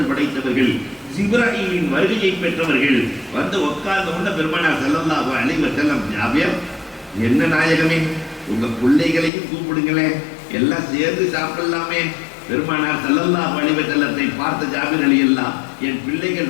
படைத்தவர்கள், ஜிப்ராயிலின் வருகையை பெற்றவர்கள். வந்து உட்கார்ந்த உடனே பெருமானார் ஸல்லல்லாஹு அலைஹி வஸல்லம், ஜாபிர் என்ன நாயகமே, உங்க பிள்ளைகளையும் கூப்பிடுங்களேன், எல்லாம் சேர்ந்து சாப்பிடலாமே. பெருமானார் ஸல்லல்லாஹு அலைஹி வஸல்லத்தை பார்த்த ஜாபிர் ரலியல்லாஹு, என்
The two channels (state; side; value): drops out; right; at 9.3 s